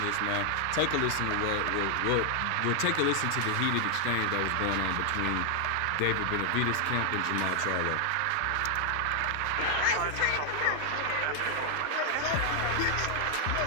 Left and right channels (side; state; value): both; different; correlation 0.00